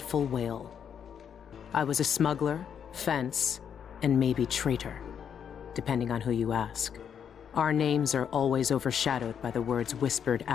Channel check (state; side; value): quieter; right; 8.0 dB